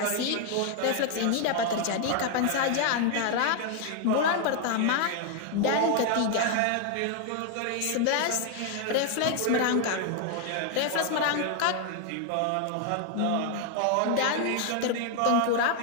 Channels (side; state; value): both; different; correlation 0.00